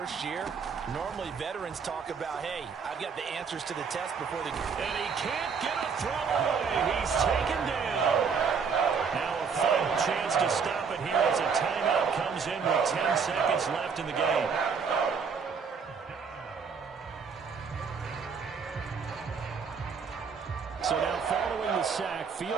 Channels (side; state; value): left; quieter; 5.9 dB